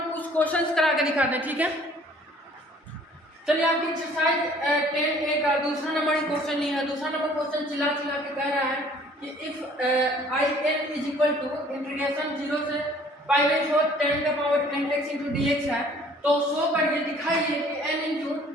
कुछ क्वेश्चंस करा के दिखाते हैं, ठीक है। चलिए आपकी एक्सरसाइज 10A का दूसरा नंबर ही क्वेश्चन नहीं है। दूसरा नंबर क्वेश्चन चिल्ला के कह रहा है कि if in is equal to integration 0 से पाई बाई 4 10 का power n x into d x है, तो शो करिए, दिखाइए कि n into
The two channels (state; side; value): normal; both; correlation 0.55